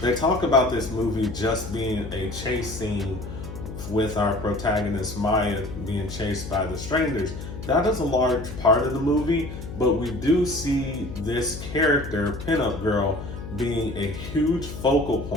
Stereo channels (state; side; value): noise; left; hum, 10 dB below the sound